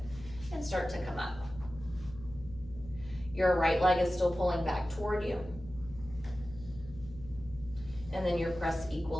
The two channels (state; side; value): noise; left; hum, 16 dB below the sound